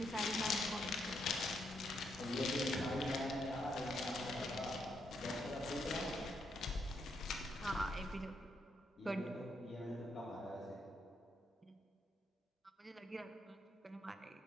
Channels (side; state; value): both; normal; correlation 0.78